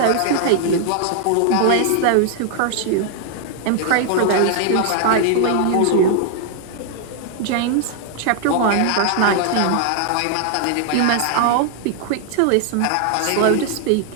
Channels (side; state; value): both; different; correlation 0.00